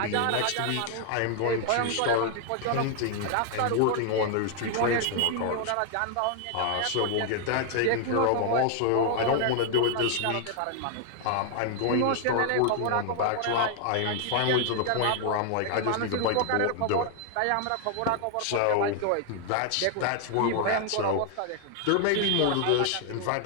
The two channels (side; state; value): both; different; correlation 0.00